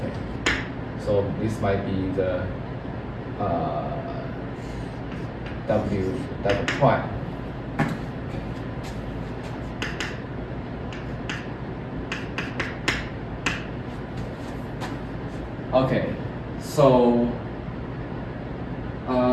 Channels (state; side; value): identical; both; correlation 1.00